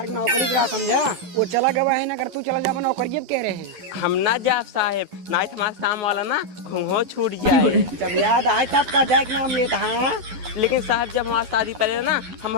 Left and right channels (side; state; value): left; late; 11 ms